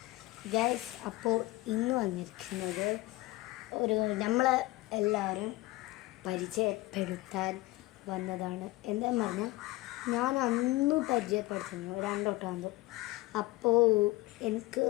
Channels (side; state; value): right; quieter; 19.6 dB